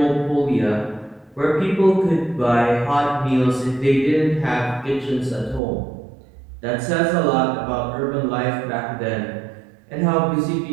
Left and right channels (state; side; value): drops out; left; at 5.6 s